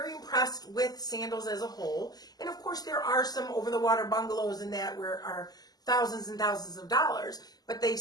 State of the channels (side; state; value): right; late; 0.19 ms